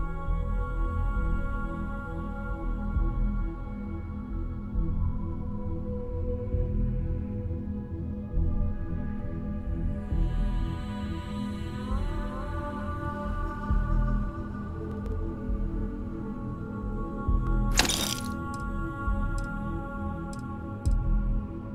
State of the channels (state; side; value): identical; both; correlation 1.00